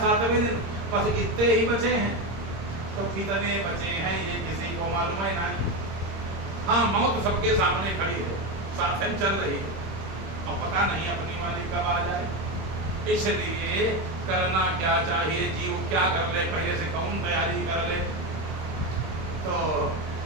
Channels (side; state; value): left; late; 26 ms